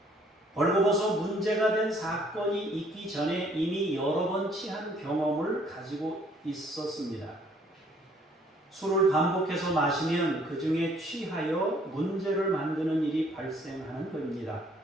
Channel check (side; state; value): both; normal; correlation 0.62